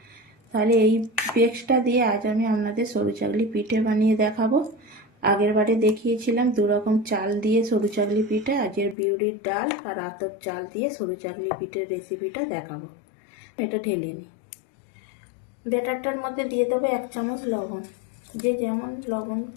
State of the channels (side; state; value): right; drops out; at 9.0 s